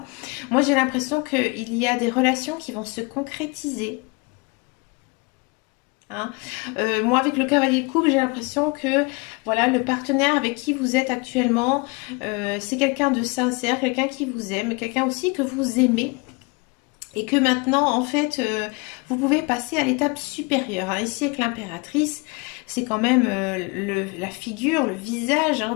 Moi j'ai l'impression qu'il y a des relations qui vont se concrétiser. Hein. Moi avec le cavalier de coupe j'ai l'impression que voilà le partenaire avec qui vous êtes actuellement c'est quelqu'un de sincère, quelqu'un qui vous aime, quelqu'un aussi que vous aimez et que maintenant en fait vous pouvez passer à l'étape supérieure. Hein. Ici avec l'impératrice c'est quand même la figure, le visage hein,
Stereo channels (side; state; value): right; quieter; 28.5 dB